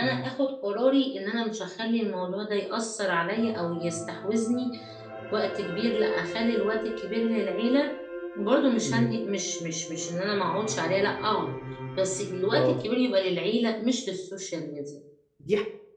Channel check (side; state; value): both; identical; correlation 1.00